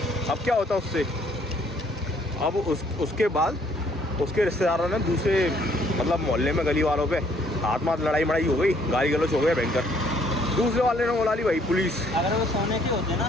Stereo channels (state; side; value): normal; both; correlation 0.64